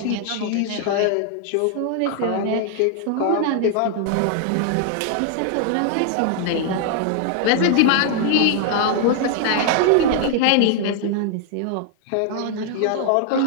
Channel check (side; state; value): both; different; correlation 0.00